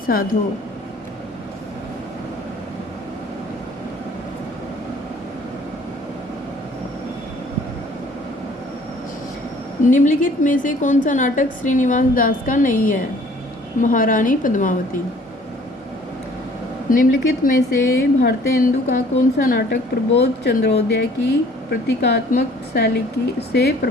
साधो। निम्नलिखित में से कौन सा नाटक श्रीनिवास दास का नहीं है? महारानी पद्मावती। निम्नलिखित में से भारतेंदु का कौन सा नाटक प्रबोध चंद्रोदय की प्रतीकात्मक शैली से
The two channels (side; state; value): both; normal; correlation 0.54